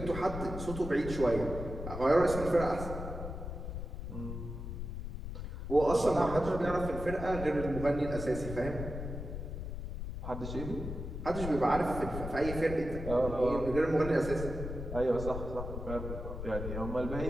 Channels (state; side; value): noise; left; rumble, 6 dB below the sound